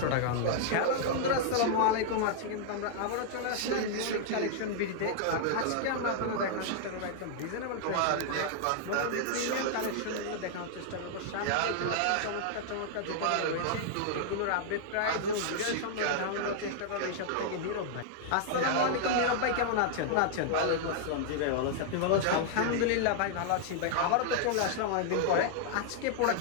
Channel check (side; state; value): both; different; correlation -0.01